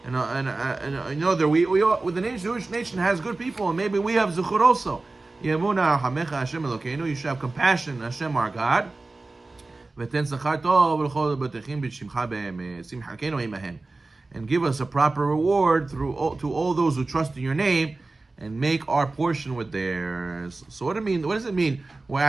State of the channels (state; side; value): quieter; left; 3.3 dB